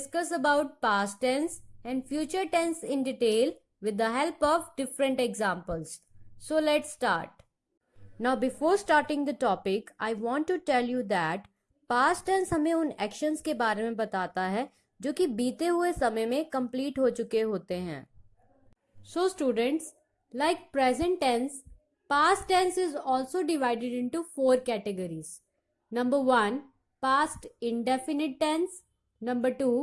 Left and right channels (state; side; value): identical; both; correlation 1.00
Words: about past tense and future tense in detail with the help of different examples. So let's start. Now before starting the topic, I want to tell you that past tense हमें उन actions के बारे में बताता है जो कि बीते हुए समय में complete हो चुके होते हैं. So students, like present tense, past tense is also divided into 4 categories. Number 1, past indefinite tense. Number